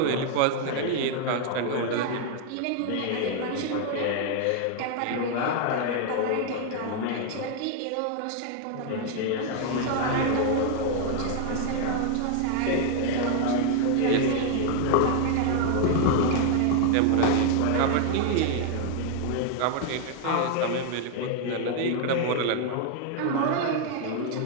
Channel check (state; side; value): different; both; correlation 0.00